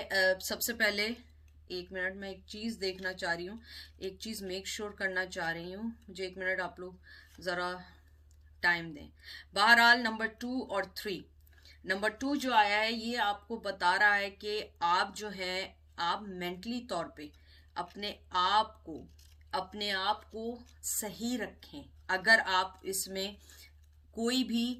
सबसे पहले 1 मिनट में एक चीज़ देखना चाह रही हूँ, एक चीज़ मेक श्योर करना चाह रही हूँ, मुझे 1 मिनट आप लोग ज़रा टाइम दें। बहरहाल नंबर 2 और 3, नंबर 2 जो आया है ये आपको बता रहा है कि आप जो है आप मेंटली तौर पे अपने आप को सही रखें। अगर आप इसमें कोई भी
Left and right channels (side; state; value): both; identical; correlation 1.00